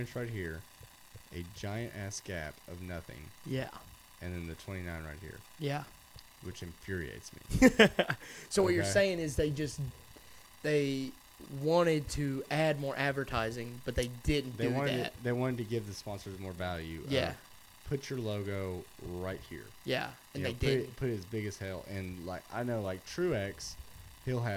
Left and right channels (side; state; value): both; identical; correlation 1.00